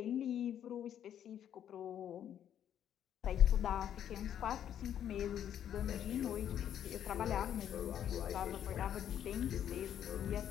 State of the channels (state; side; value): quieter; right; 10.0 dB